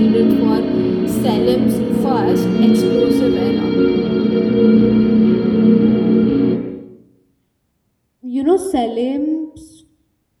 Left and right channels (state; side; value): identical; both; correlation 1.00